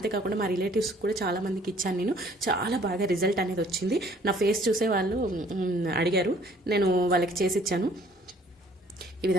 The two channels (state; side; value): normal; both; correlation 0.58